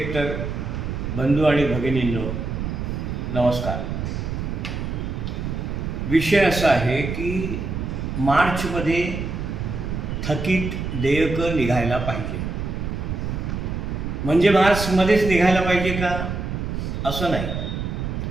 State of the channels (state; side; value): noise; right; rumble, 4 dB below the sound